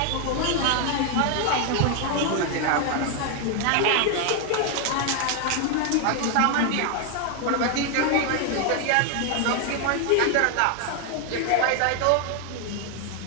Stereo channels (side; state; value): both; different; correlation 0.01